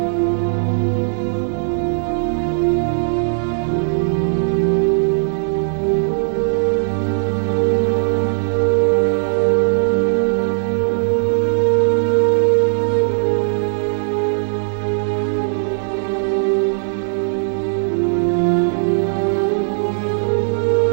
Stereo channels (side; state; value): left; silent; digital silence